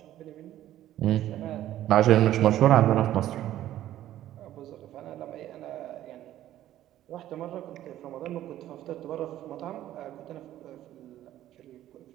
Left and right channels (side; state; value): left; quieter; 13.0 dB